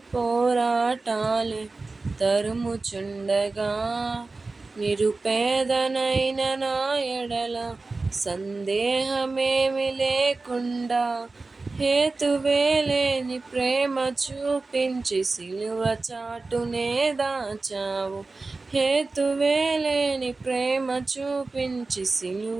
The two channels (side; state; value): left; quieter; 3.6 dB